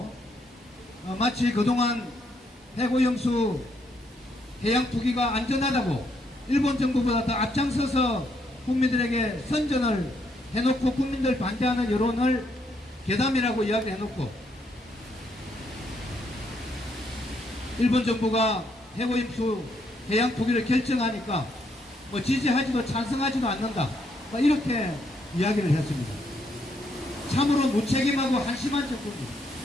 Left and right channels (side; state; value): both; normal; correlation 0.74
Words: 마치 그동안 해고염수 해양 투기가 안전하다고 일본 정부보다 더 앞장서서 국민들에게 선전을 해놓고 국민들 반대하는 여론을 괴담이라고 이야기해놓고 일본 정부가 해고염수 해양 투기를 결정하니까 뭐 지지하지도 찬성하지도 않는다, 이렇게 이야기를 했습니다. 참으로 무책임하고 한심한 정부입니다.